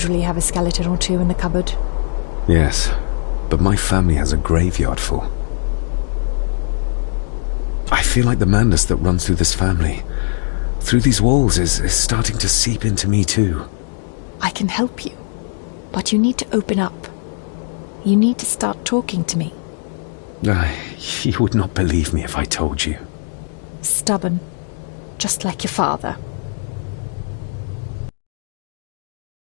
have a skeleton or two in the cupboard. Yes, but my family has a graveyard full. I feel like the madness that runs through this family, through these walls, is starting to seep into me too. I can help you, but you need to open up. You need to start talking to me. You would not believe me if I told you. Stubborn, just like your father.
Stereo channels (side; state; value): right; silent; digital silence